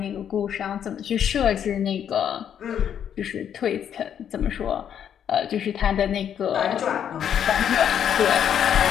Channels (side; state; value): right; quieter; 9.0 dB